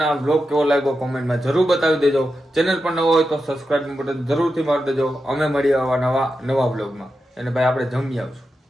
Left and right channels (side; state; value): both; normal; correlation 0.89